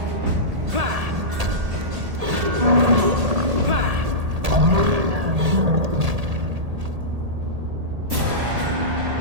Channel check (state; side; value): late; left; 1.8 ms